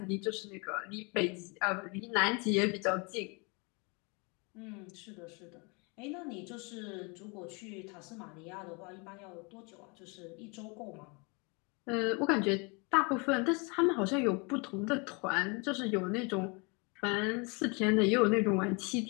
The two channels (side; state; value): right; quieter; 31.0 dB